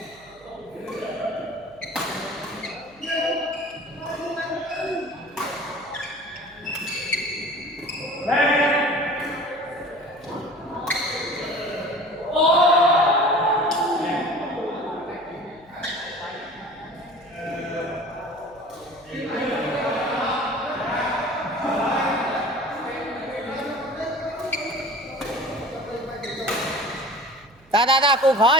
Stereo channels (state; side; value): noise; right; hum, 28 dB below the sound